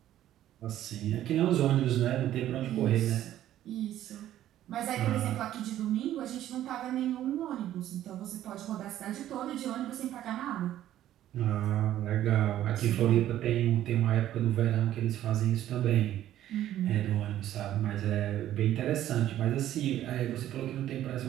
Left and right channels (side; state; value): left; quieter; 12.5 dB